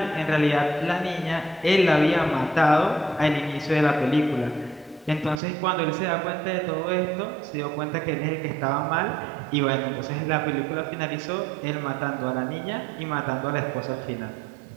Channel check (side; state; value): left; drops out; at 5.4 s